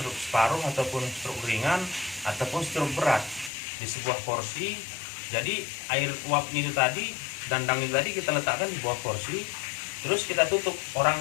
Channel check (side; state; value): right; drops out; at 3.5 s